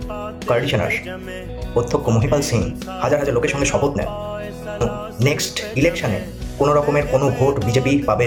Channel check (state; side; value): identical; both; correlation 1.00